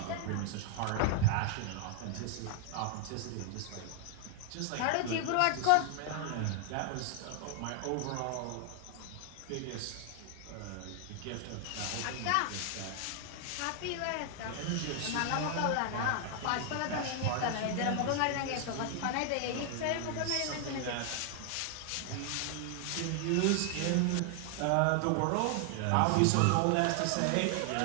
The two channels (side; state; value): both; different; correlation 0.00